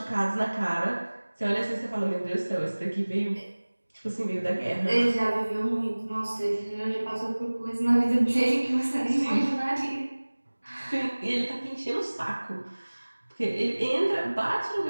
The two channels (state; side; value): inverted; both; correlation -1.00